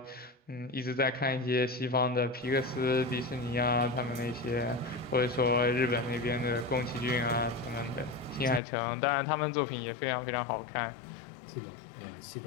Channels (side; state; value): right; drops out; at 8.6 s